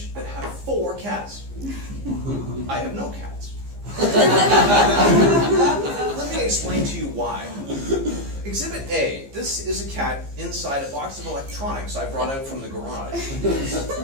that have 4 cats. I have no cats. Let me explain to you why. Exhibit A. This is a cat inside a box of electronics I brought out from the garage.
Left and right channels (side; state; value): left; late; 15 ms